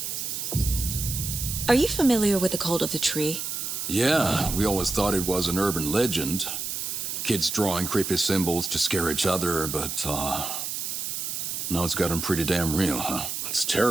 Are you familiar with the Cult of the Tree? Yeah, we always thought it was an urban legend. Kids drawing creepy symbols to scare each other, but, now it's gotten pretty damn real, huh? It's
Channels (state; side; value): noise; right; hiss, 4 dB below the sound